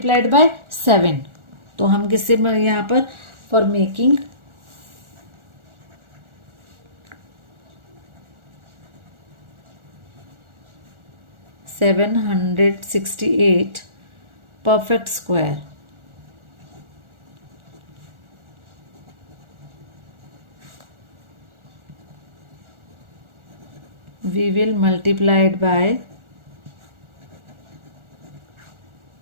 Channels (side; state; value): left; late; 1.4 ms